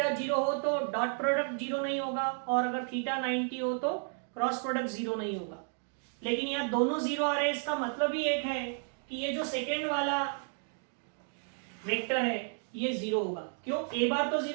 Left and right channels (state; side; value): silent; left; 56 dB below the other